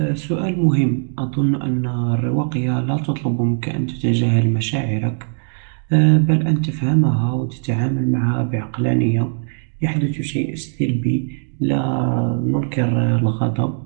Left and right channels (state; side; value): silent; left; 62 dB below the other